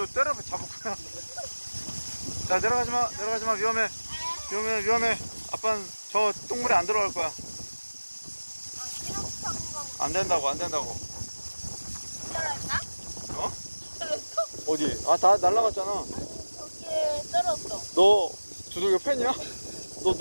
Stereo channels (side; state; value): both; inverted; correlation -1.00